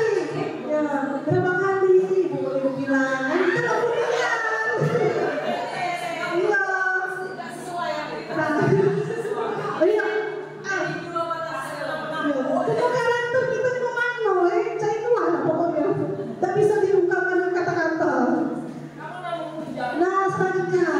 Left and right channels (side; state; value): both; identical; correlation 1.00